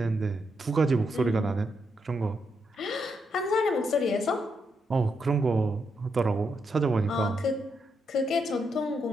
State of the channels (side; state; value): both; normal; correlation 0.81